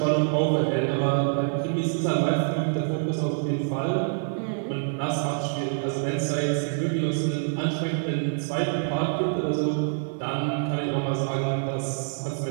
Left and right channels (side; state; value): left; silent; digital silence